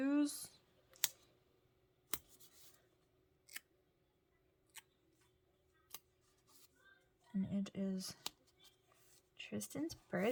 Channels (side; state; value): both; identical; correlation 1.00